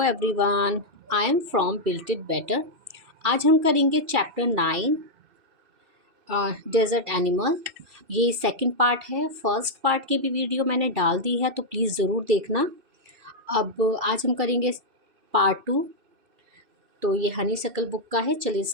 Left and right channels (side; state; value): left; late; 2.6 ms